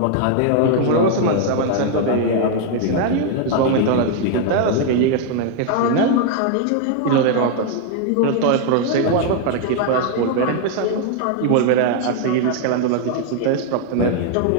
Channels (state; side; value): different; both; correlation 0.00